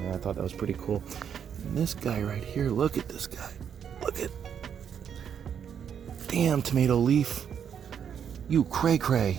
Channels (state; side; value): quieter; left; 8.1 dB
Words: and I thought that was pretty cool. And this guy right here, look at this guy. Look at, damn tomato leaf. You